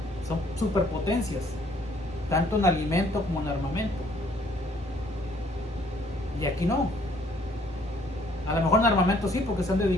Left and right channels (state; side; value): normal; both; correlation 0.62